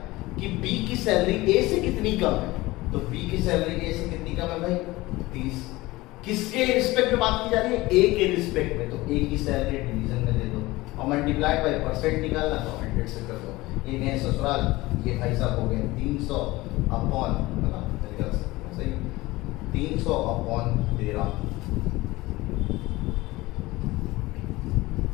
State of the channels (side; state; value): right; quieter; 19.9 dB